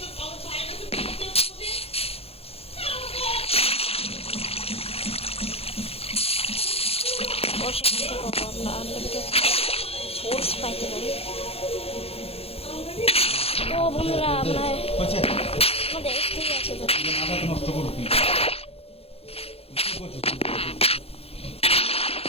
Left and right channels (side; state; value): right; late; 0.29 ms